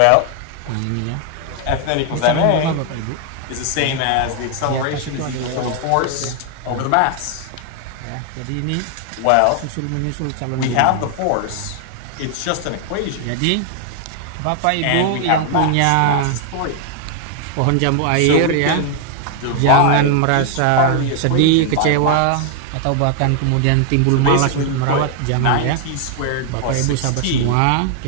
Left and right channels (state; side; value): different; both; correlation 0.00